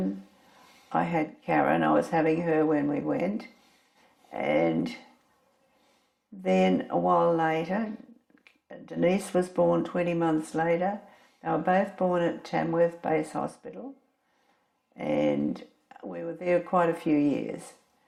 I had Karen. I was having her when we went. And then a while later, Denise was born 20 months later. They were both born at Tamworth Base Hospital. And we were there quite a few years.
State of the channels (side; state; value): both; identical; correlation 1.00